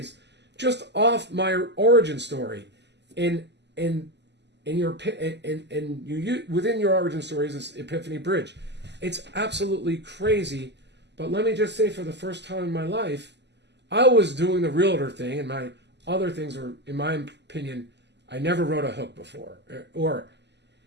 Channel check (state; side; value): late; left; 0.50 ms